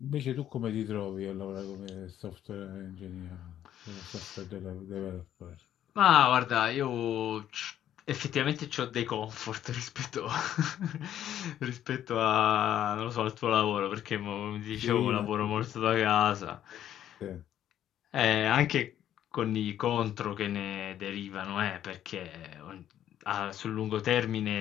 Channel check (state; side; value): quieter; right; 11.1 dB